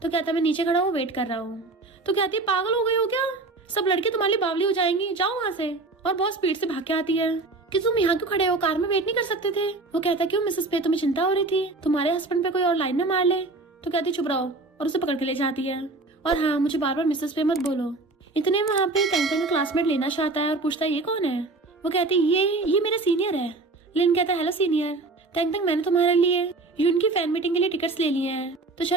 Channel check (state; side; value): quieter; left; 3.3 dB